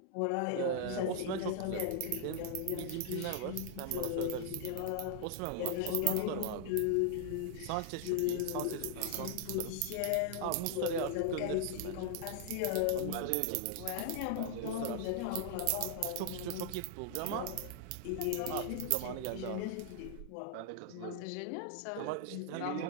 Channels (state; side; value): different; both; correlation 0.00